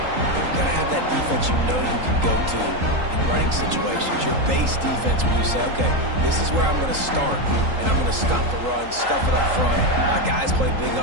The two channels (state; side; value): late; left; 3.8 ms